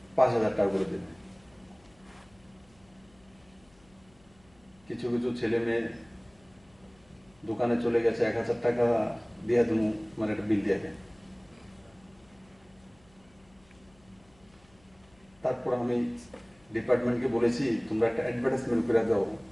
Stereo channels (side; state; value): left; noise; hum, 30 dB below the sound